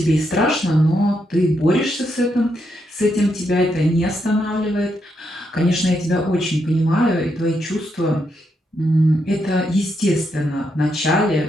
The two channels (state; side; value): normal; both; correlation 0.80